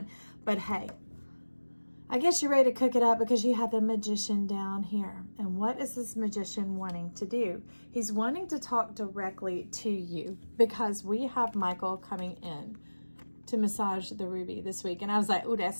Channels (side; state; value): both; inverted; correlation -1.00